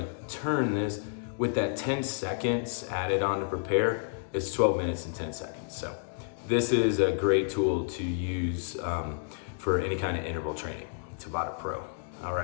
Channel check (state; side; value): silent; right; digital silence